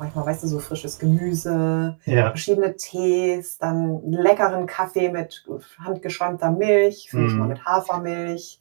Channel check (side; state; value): left; silent; 64 dB below the other